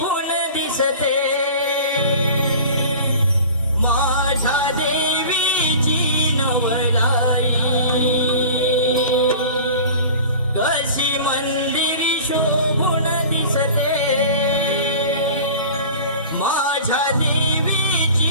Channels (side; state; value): both; inverted; correlation -0.39